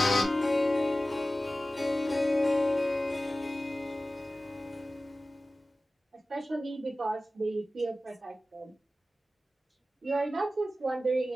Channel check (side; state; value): both; normal; correlation 0.95